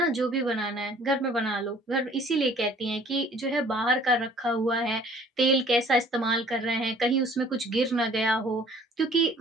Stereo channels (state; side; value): normal; both; correlation 0.54